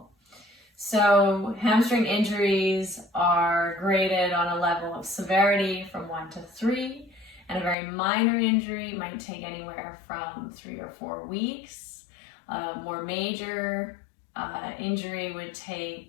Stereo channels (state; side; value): drops out; right; at 7.8 s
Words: So hamstring injuries are graded on a level of severity from 1 to 3, and a very minor injury might take anywhere from 3 or 4 weeks. More major injury would